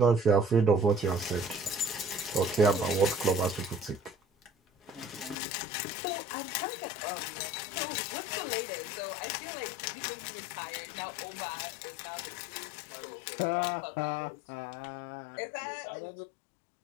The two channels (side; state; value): right; drops out; at 5.4 s